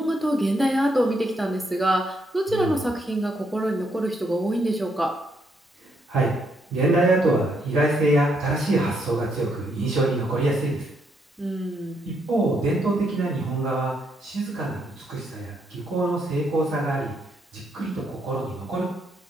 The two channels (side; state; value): both; normal; correlation 0.75